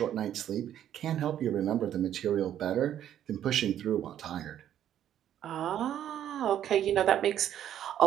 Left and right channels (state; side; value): quieter; left; 10.7 dB